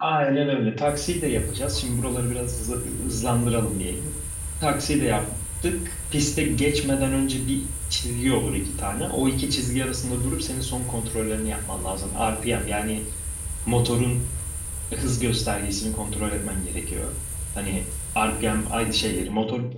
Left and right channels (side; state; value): both; identical; correlation 1.00